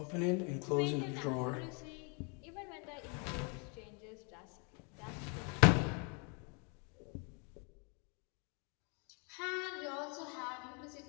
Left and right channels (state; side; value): quieter; right; 35.4 dB